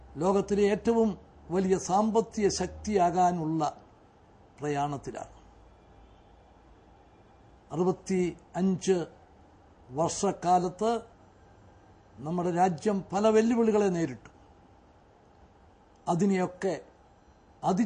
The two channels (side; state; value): both; identical; correlation 1.00